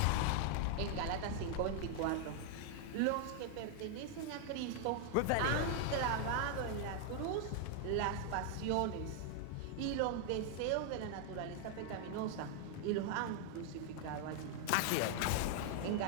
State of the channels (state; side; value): different; both; correlation 0.00